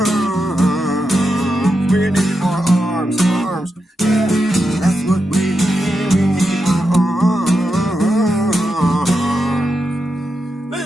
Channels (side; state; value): both; normal; correlation 0.87